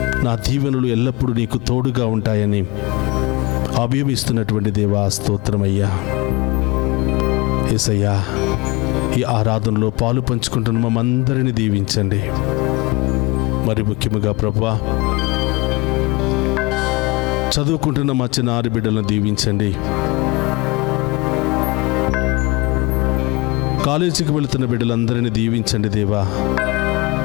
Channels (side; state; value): right; quieter; 24.4 dB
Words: నా దీవెనలు ఎల్లప్పుడూ నీకు తోడుగా ఉంటాయని అభయమిస్తున్నటువంటి దేవా స్తోత్రమయ్యా. యేసయ్యా, ఈ ఆరాధనలో పాలు పంచుకుంటున్న మమ్మందరినీ దీవించండి. మరి ముఖ్యంగా ప్రభువా, చదువుకుంటున్న మా చిన్నారి బిడ్డలను దీవించండి. కాలేజీకి వెళుతున్న బిడ్డలందరినీ దీవించండి దేవా.